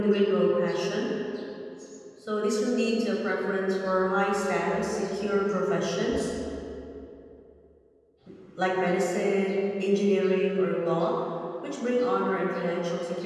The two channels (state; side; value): identical; both; correlation 1.00